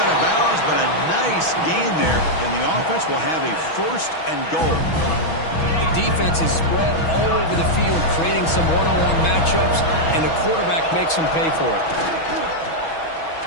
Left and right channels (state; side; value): late; right; 6.2 ms